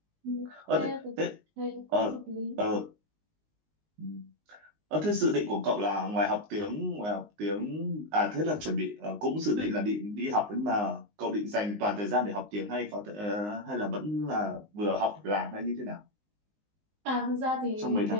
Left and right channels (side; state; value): left; late; 19 ms